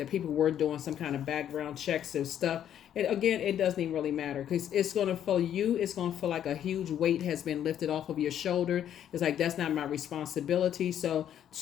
people were doing some kind of background checks and stuff. And again, it doesn't even really matter, because it's going to feel it's going to feel like a huge weight has been lifted off of your shoulder. It's like, that's not my responsibility. So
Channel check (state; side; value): quieter; right; 10.2 dB